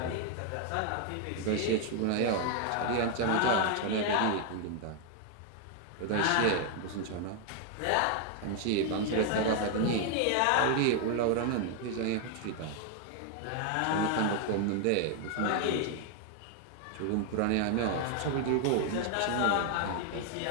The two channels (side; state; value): both; different; correlation 0.00